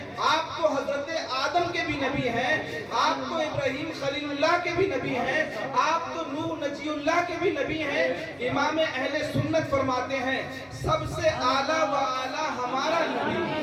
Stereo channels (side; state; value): both; identical; correlation 1.00